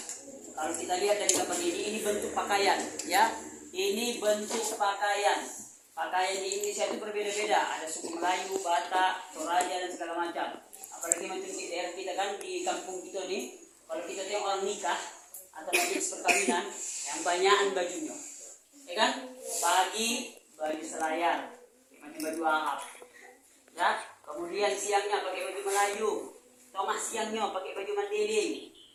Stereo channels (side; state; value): both; identical; correlation 1.00